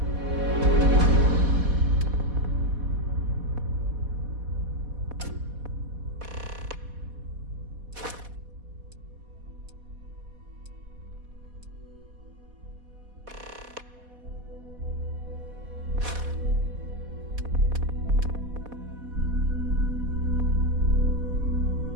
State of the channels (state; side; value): late; left; 4.1 ms